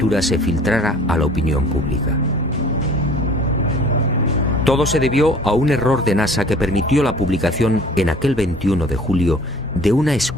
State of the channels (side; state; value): both; normal; correlation 0.49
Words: se filtrara a la opinión pública. Todo se debió a un error de NASA que permitió la publicación en aquel 21 de julio de una